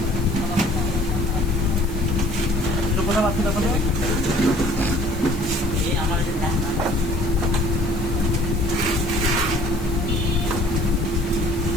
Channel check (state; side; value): noise; left; hiss, 18 dB below the sound